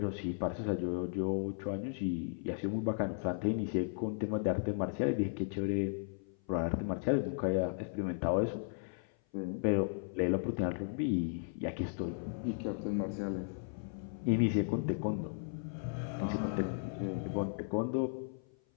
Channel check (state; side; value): silent; right; 54 dB below the other